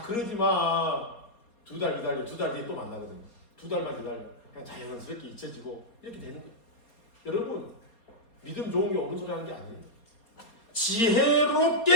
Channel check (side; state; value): right; late; 4.3 ms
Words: 그러지 마. 2달 기다려. 2달 뒤에 또 만나거든요. 2달만 기다려. 그냥 자연스럽게 잊혀지고 이렇게 되는 거예요. 여러분 믿음 좋은 게 옳은 소리 하는 게 아니에요.